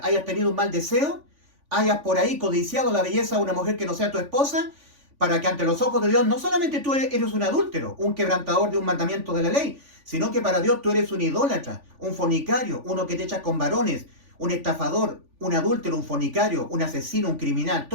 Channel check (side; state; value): left; late; 3.5 ms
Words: hayas tenido un mal deseo, hayas por ahí codiciado la belleza de una mujer que no sea tu esposa, para que ante los ojos de Dios no solamente tú eres un adúltero, un quebrantador de un mandamiento de la ley, sino que para Dios tú eres un idólatra, un fornicario, uno que te echas con varones, un estafador, un adúltero, un fornicario, un asesino, un criminal,